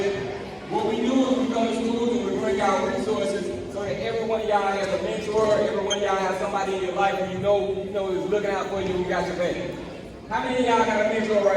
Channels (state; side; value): identical; both; correlation 1.00